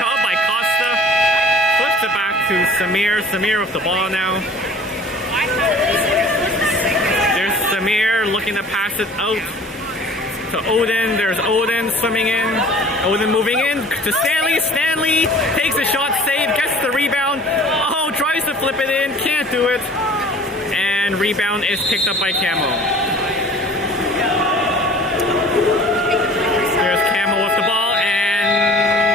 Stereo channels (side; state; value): both; normal; correlation 0.47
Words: by Costa. Flips it back to Samir. Samir with the ball now. Samir looking to pass it out to Odin. There's Odin swimming in. Odin moving in to Stanley. Stanley takes a shot, save, gets the rebound. Oh, tries to flip it in, can't do it. And rebound is picked up by CAMO. There's CAMO with the ball, and